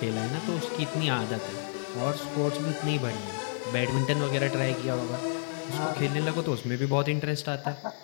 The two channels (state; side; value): silent; right; digital silence